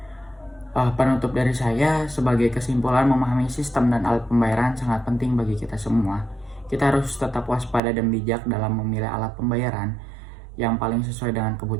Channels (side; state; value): left; drops out; at 7.8 s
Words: Penutup dari saya, sebagai kesimpulan, memahami sistem dan alat pembayaran sangat penting bagi kita semua. Kita harus tetap waspada dan bijak dalam memilih alat pembayaran yang paling sesuai dengan